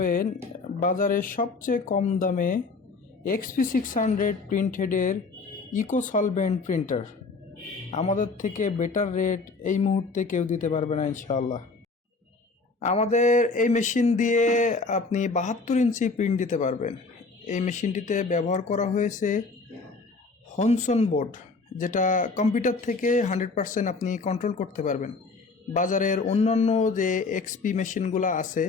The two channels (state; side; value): quieter; right; 4.0 dB